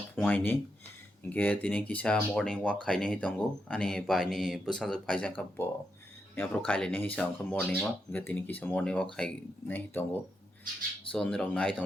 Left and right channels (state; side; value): normal; both; correlation 0.84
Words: phuaini ge tini kisa morning walk khaine hi tongo ani bai ni bwsajak phaijak ka bo yapro khaile ni hisa ongkha morning walk ge tini kisa morning walk khaine hi tongo so nirok nai